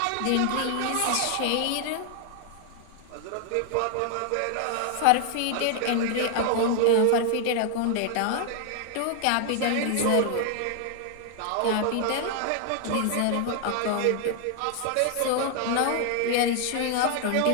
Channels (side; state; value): both; different; correlation 0.00